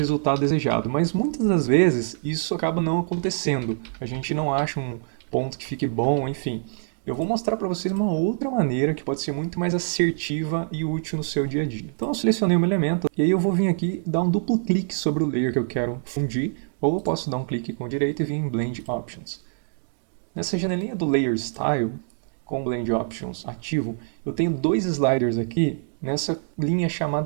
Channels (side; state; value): left; silent; digital silence